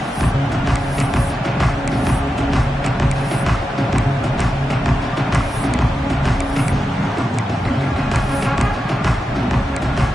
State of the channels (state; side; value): normal; both; correlation 0.89